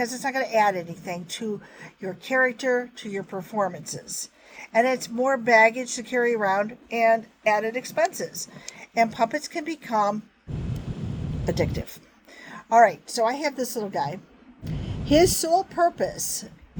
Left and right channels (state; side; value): identical; both; correlation 1.00